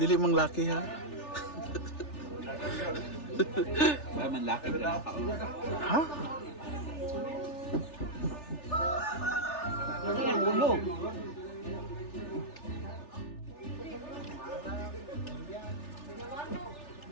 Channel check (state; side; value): late; right; 3.4 ms